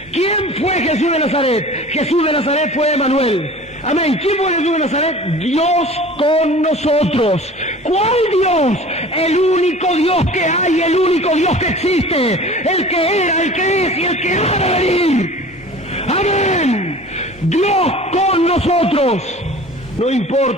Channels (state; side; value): normal; both; correlation 0.42